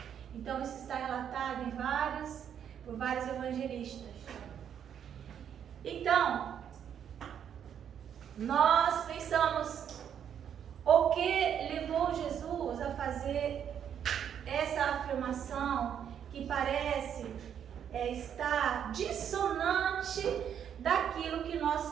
Então isso está relatado por vários evangelistas. Então, nós pensamos, o que levou Jesus a fazer essa afirmação que parece estar dissonante daquilo que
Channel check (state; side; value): quieter; left; 8.8 dB